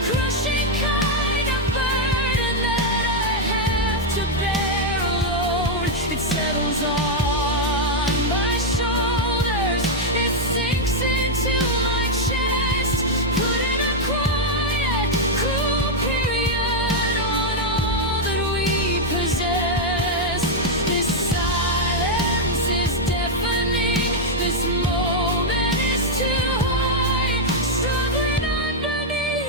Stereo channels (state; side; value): normal; both; correlation -0.01